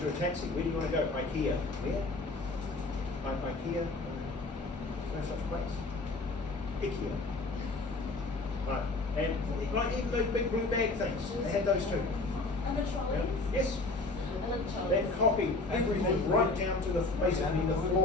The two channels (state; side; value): quieter; right; 3.3 dB